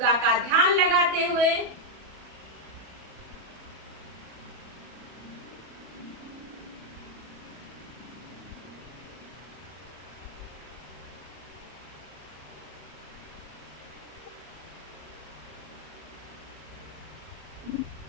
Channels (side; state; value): left; late; 34 ms